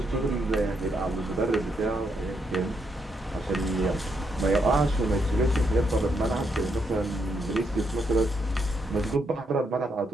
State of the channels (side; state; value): both; normal; correlation 0.78